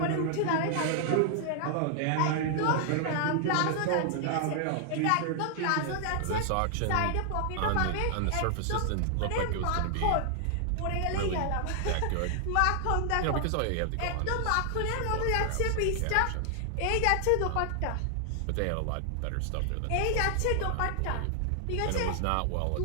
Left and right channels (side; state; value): both; different; correlation 0.00